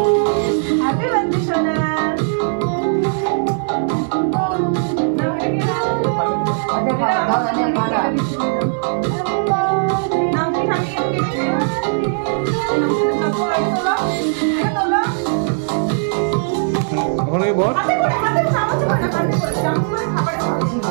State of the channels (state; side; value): silent; left; digital silence